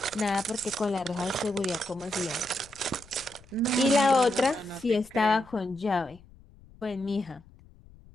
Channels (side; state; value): left; noise; rumble, 24 dB below the sound